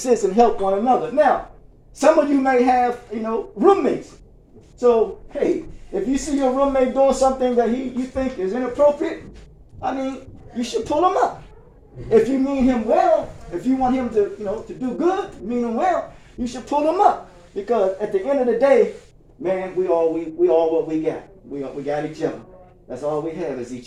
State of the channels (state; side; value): identical; both; correlation 1.00